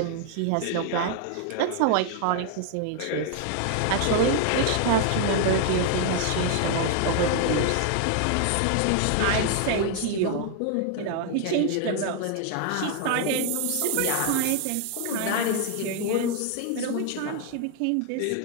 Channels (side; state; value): both; different; correlation 0.00